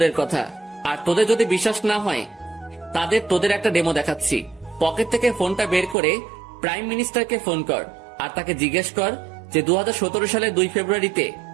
কথা। আর তোদের যদি বিশ্বাস না হয় তোদের একটা ডেমো দেখাচ্ছি। পকেট থেকে ফোনটা বের করে প্রাইম মিনিস্টারকে ফোন কর, আর তাকে জিজ্ঞেস কর যে 2017 সালের 2 ফেব্রুয়ারিতে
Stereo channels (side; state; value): left; drops out; at 6.0 s